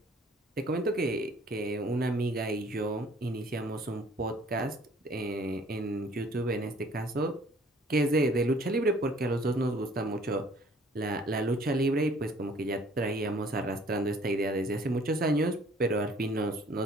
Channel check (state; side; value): normal; both; correlation 0.56